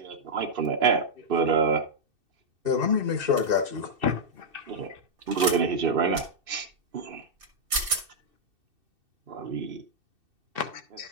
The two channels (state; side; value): late; left; 2.6 ms